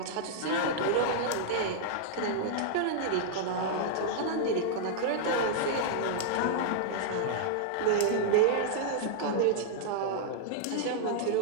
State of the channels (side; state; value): both; different; correlation -0.01